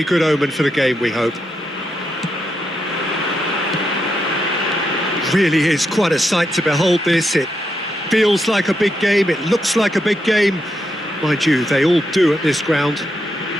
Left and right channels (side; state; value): both; normal; correlation 0.82